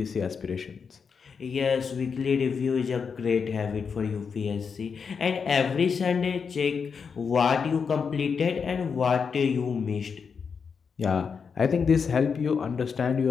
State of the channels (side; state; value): right; quieter; 5.9 dB